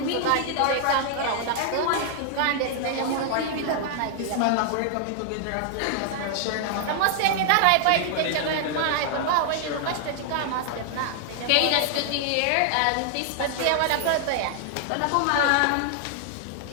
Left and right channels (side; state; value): both; different; correlation -0.01